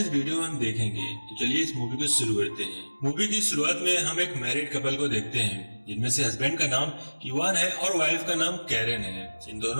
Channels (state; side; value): inverted; both; correlation -1.00